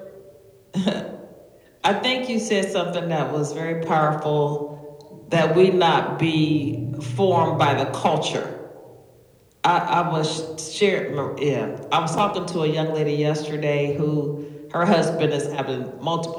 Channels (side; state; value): both; identical; correlation 1.00